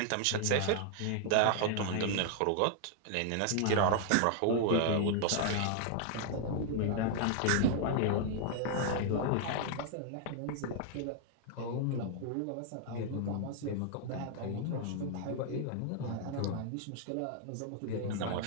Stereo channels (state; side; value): different; both; correlation -0.01